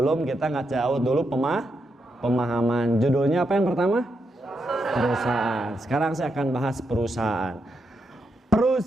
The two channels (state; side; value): normal; both; correlation 0.83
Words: kita jauh dulu pemahaman. Judulnya apa yang pertama? Perusahaan. Sekarang saya akan bahas perusahaan.